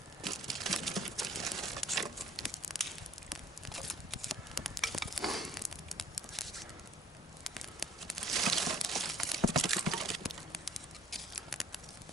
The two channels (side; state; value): both; normal; correlation 0.58